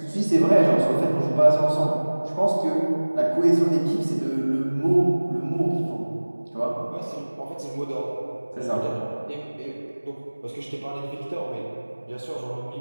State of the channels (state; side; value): inverted; both; correlation -1.00